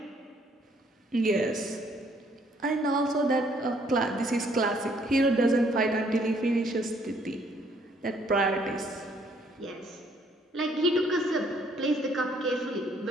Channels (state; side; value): normal; both; correlation 0.65